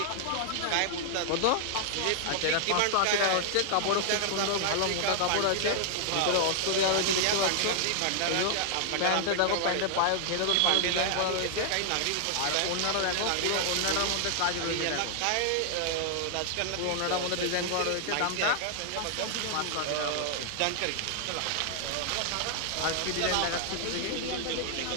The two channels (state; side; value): different; both; correlation 0.00